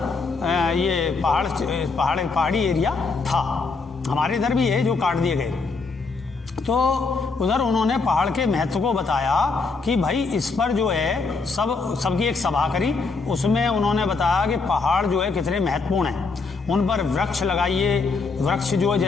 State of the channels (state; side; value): quieter; right; 4.3 dB